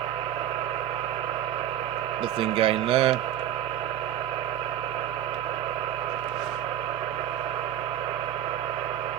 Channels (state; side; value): quieter; left; 11.2 dB